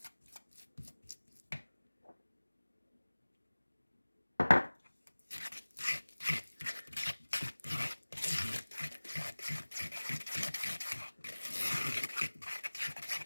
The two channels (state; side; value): inverted; both; correlation -1.00